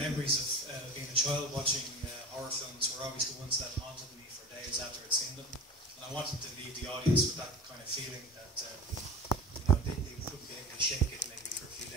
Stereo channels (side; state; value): both; normal; correlation 0.34